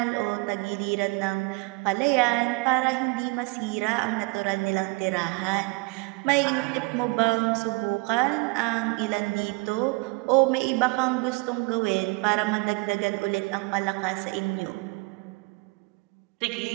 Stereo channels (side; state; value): left; quieter; 28.3 dB